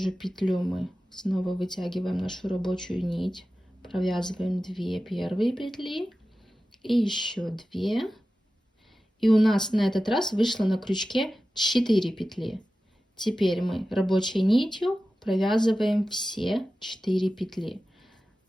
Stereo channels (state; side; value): normal; both; correlation 0.95